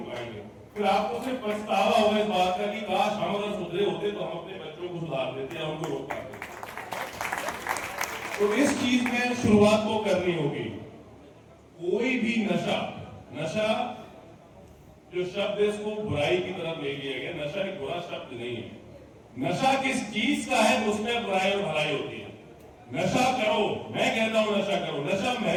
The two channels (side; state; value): both; identical; correlation 1.00